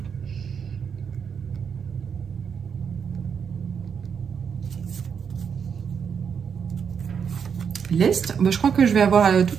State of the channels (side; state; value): left; quieter; 6.9 dB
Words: L'est, je crois que je vais avoir